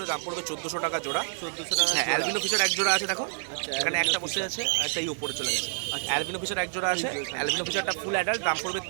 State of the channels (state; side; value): silent; left; digital silence